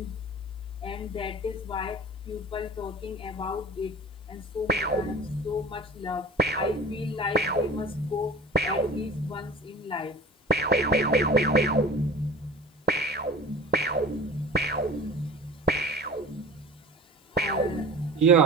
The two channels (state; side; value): normal; both; correlation 0.38